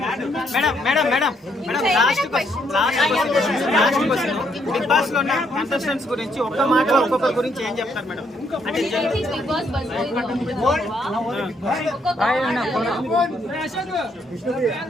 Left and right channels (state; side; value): normal; both; correlation 0.73